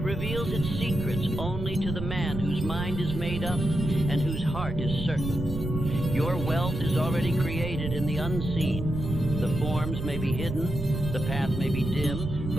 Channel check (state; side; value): noise; right; rumble, 6 dB below the sound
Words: its secrets only to the man whose mind is made up and whose heart is certain. Your wealth is already created in the unseen. The forms may be hidden, the path may be dim,